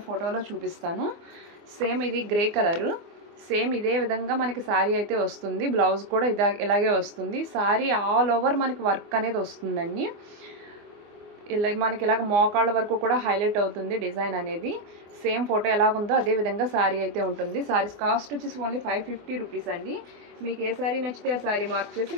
ఫోటోలో చూపిస్తాను. సేమ్ ఇది గ్రే కలరు, సేమ్ ఇదే విధంగా మనకి సారీ అయితే వస్తుంది. బ్లౌజ్ కూడా ఇలాగే వస్తుంది. సారీ ఆల్ ఓవర్ మనకి వర్క్ అనేది వస్తుందండి. ఇలా మనకి ఇలాగ మోకాళ్ళ వరకు కూడా హైలైట్ అవుతుంది డిజైన్ అనేది. సేమ్ ఫోటో ఎలాగుందో అదే విధంగా సారీ అయితే ఉంటుంది. సారీస్ కాస్ట్ వచ్చేసి ఓన్లీ 550 రూపీస్ అండి. మీకు ఏ సారీ నచ్చితే ఆ సారీ మార్క్ చేసి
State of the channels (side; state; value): left; late; 24 ms